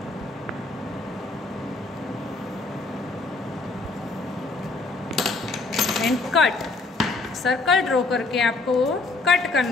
And cut. Circle draw करके आपको कट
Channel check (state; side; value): quieter; right; 3.5 dB